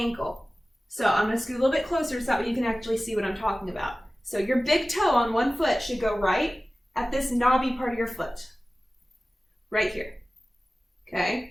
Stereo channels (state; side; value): normal; both; correlation 0.97